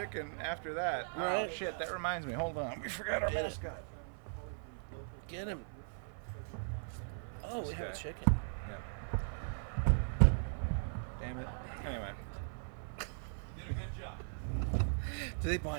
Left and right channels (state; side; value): silent; left; 52 dB below the other